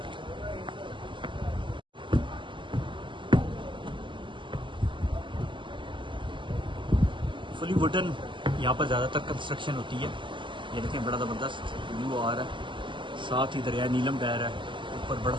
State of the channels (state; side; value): late; left; 0.24 ms